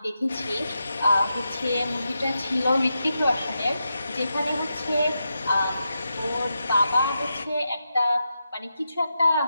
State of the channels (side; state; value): both; inverted; correlation -0.87